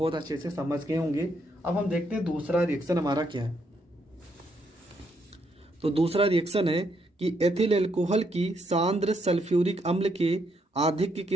अच्छे से समझ गए होंगे। अब हम देखते हैं दूसरा रिएक्शन हमारा क्या है। तो दूसरा रिएक्शन है कि एथिल एल्कोहल की सांद्र सल्फ्यूरिक अम्ल के आधिक्य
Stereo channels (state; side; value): normal; both; correlation 0.75